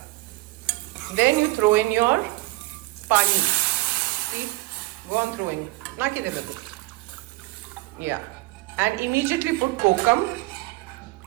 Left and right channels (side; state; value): left; quieter; 21.4 dB